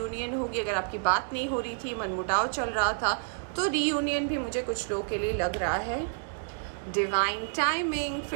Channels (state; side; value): silent; left; digital silence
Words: होगी। अगर आपकी बात नहीं हो रही थी, मनमुटाव चल रहा था, तो रीयूनियन भी मुझे कुछ लोगों के लिए लग रहा है। डिवाइन टाइमिंग,